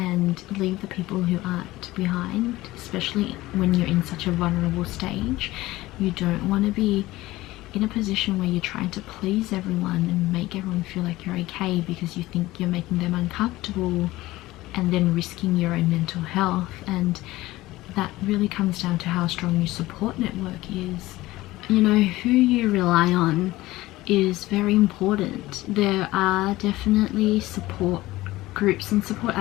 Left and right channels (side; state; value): right; quieter; 18.0 dB